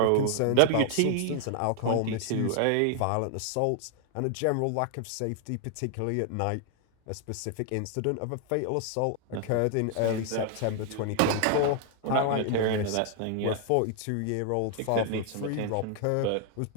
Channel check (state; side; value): different; both; correlation 0.00